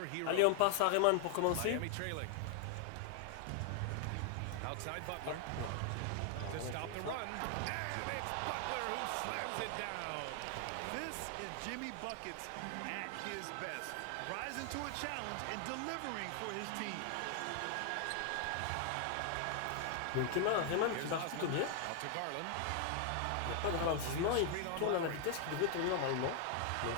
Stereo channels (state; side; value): different; both; correlation 0.00